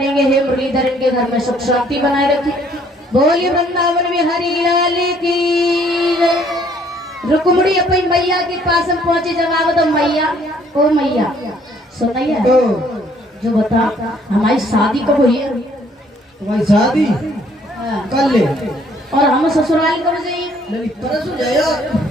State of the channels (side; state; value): both; normal; correlation 0.62